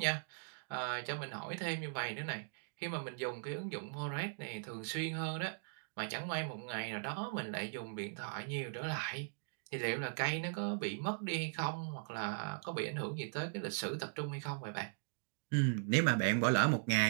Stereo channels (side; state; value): left; silent; digital silence